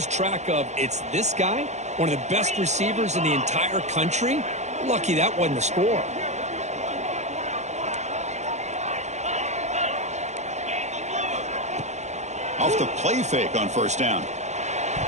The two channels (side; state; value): left; late; 0.33 ms